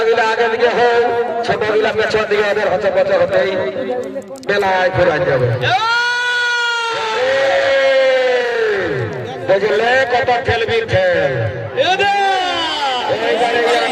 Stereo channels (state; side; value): identical; both; correlation 1.00